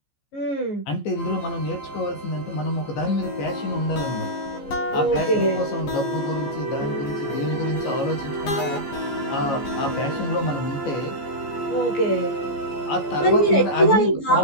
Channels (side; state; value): right; late; 14 ms